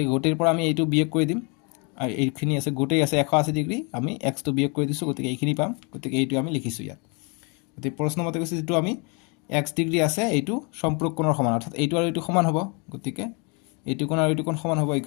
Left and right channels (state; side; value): quieter; right; 33.2 dB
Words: গোটেৰ পৰা আমি এইটো বিয়োগ কৰি দিম আৰু এইখিনি আছে গোটেই আছে 180 ডিগ্ৰী আমি x টো বিয়োগ কৰি দিছো গতিকে এইখিনি পাম গতিকে এইটো আমি লিখিছো ইয়াত গতিকে প্ৰশ্নমতে কৈছে যেটো আমি x ডিগ্ৰী আছে এইটো সম্পূৰক কোণৰ সমান অৰ্থাৎ এইটো আৰু এইটো সমান হ'ব গতিকে এইটো কোণ আৰু এইটো কোণ সমান হ'ব